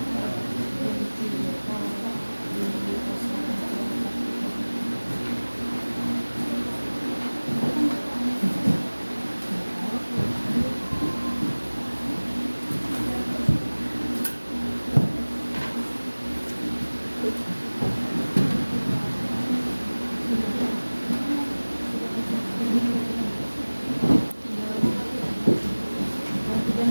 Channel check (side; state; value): both; inverted; correlation -1.00